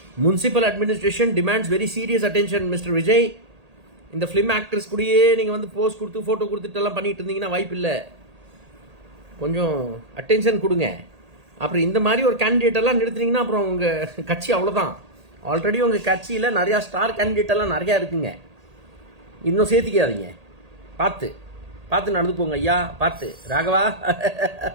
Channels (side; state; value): left; late; 1.8 ms